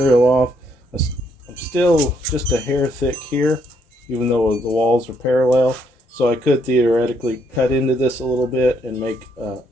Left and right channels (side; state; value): both; normal; correlation 0.72